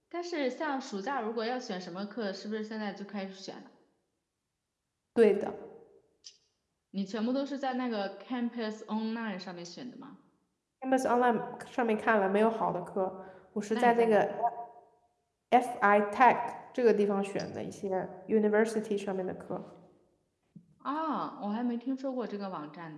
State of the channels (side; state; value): both; identical; correlation 1.00